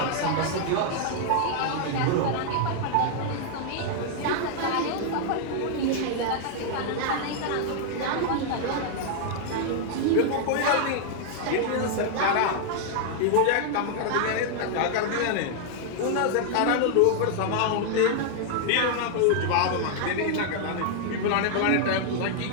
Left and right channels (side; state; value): both; different; correlation 0.00